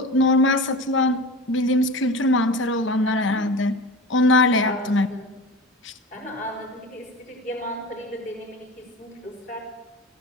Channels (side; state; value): both; normal; correlation 0.31